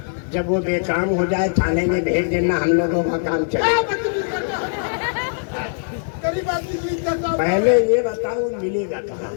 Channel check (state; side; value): silent; right; digital silence